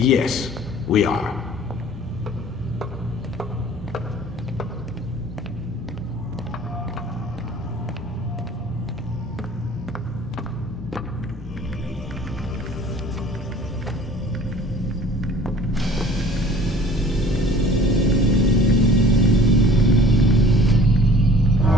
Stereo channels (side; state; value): both; normal; correlation 0.50